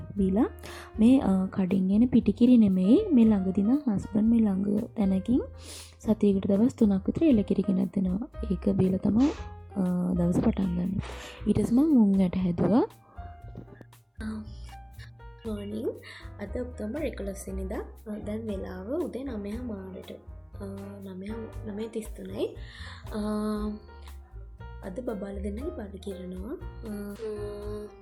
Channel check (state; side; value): identical; both; correlation 1.00